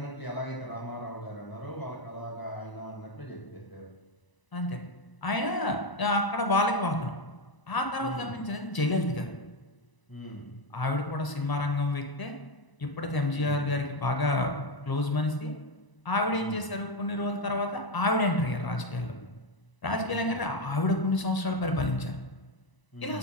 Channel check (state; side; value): late; right; 1.0 ms